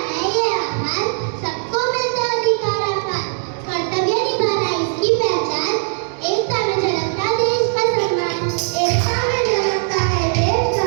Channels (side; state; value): left; silent; 55 dB below the other